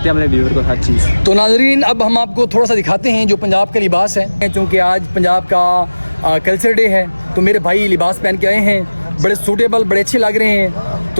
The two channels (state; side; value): inverted; both; correlation -1.00